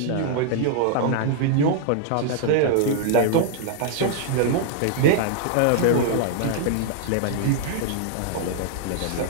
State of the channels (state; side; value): different; both; correlation 0.00